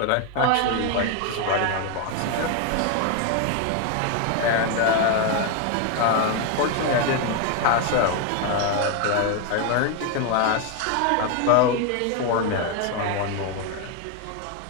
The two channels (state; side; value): different; both; correlation 0.01